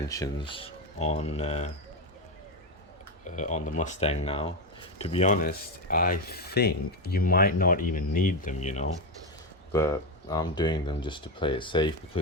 on the Mustang now. To be honest, I think you might not even need them, but I'm doing them just to play it safe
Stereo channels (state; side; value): normal; both; correlation 0.11